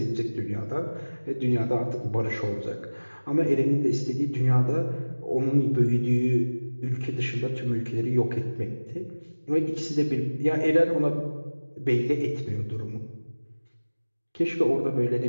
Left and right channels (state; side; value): inverted; both; correlation -1.00